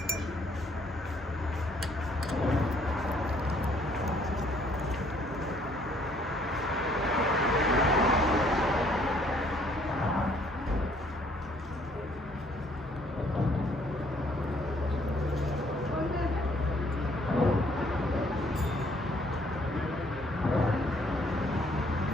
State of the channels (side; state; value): both; normal; correlation 0.63